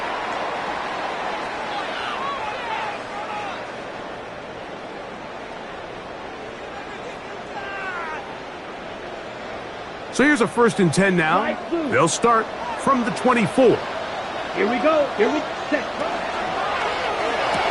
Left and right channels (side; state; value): both; identical; correlation 1.00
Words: So here's a 1st and 10 now. They'll start from the 24. Here we go. Here we set.